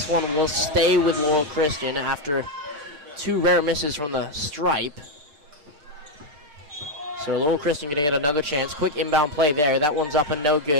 one will stay with Laurel Christian after two rare misses from the stripe. So Laurel Christian going to get another chance. Quick inbound play there. That one's up and no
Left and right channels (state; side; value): late; left; 6.7 ms